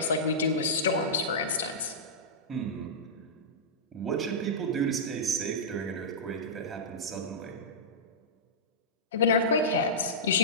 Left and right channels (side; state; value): both; normal; correlation -0.15